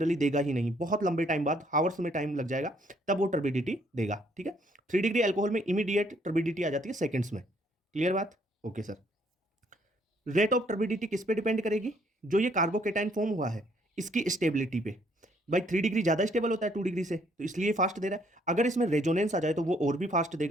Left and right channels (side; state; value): both; normal; correlation 0.66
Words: देगा ही नहीं, बहुत लंबे टाइम बाद, हावर्स में टाइम लग जाएगा तब वो टर्बिडिटी देगा। ठीक है, 3 डिग्री एल्कोहल में इमीडिएट टर्बिडिटी आ जाती है सेकंड्स में। क्लियर बात, okay sir. Rate of turbidity किस पे डिपेंड करेगी, जो ये कार्बोकेटाइन फॉर्म हुआ है इसकी स्टेबिलिटी पे। भाई 3 डिग्री ज्यादा स्टेबल होता है 2 डिग्री से, तो इसलिए फास्ट दे रहा है। अगर इसमें रेजोनेंस आ जाए तो वो और भी फास्ट